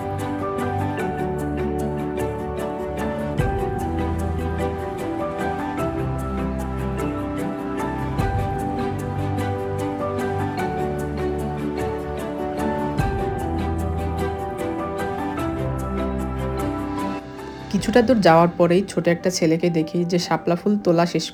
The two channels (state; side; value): identical; both; correlation 1.00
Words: কিছুটা দূর যাওয়ার পরেই ছোট একটা ছেলেকে দেখি যে শাপলা ফুল তোলা শেষ